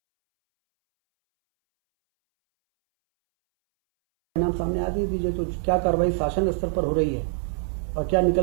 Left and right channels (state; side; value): silent; left; 62 dB below the other